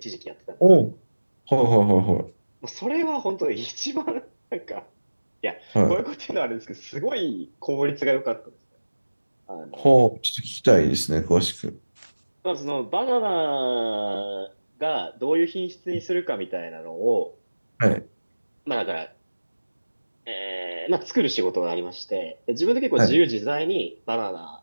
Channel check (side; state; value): both; inverted; correlation -1.00